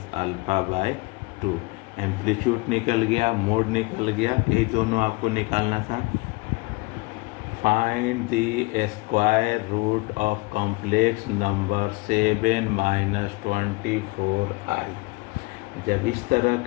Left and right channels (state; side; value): quieter; right; 25.4 dB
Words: alpha bye 2। Amplitude निकल गया, मोड निकल गया, ये दोनों आपको निकालना था। Find the square root of complex number 7 minus 24i। जब इस तरह